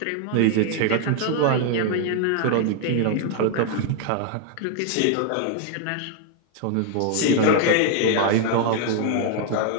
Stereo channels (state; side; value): different; both; correlation 0.00